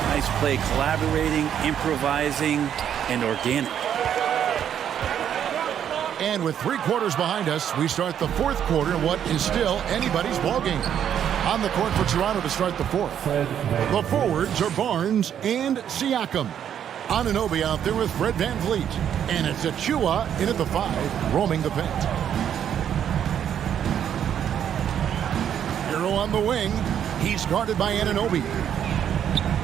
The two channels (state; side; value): quieter; left; 9.3 dB